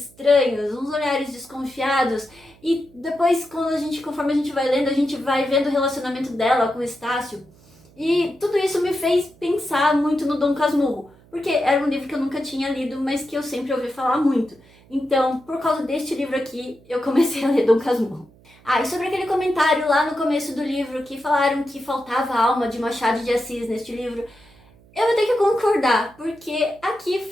uns olhares desconfiados, e depois, conforme a gente vai lendo, a gente vai vendo o relacionamento dela com o Estácio. E tudo isso me fez pensar muito no Dom Casmurro, porque era um livro que eu nunca tinha lido, mas que eu sempre ouvi falar muito. Então, por causa deste livro aqui, eu comecei a ler Dom Casmurro. Ah, e sobre aquele comentário lá no começo do livro que falaram que faltava a alma de Machado de Assis neste livro, eu vou ter que concordar, porque aqui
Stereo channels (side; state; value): right; noise; hum, 27 dB below the sound